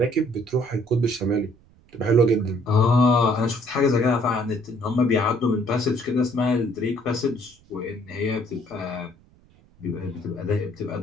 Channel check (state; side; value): noise; right; rumble, 29 dB below the sound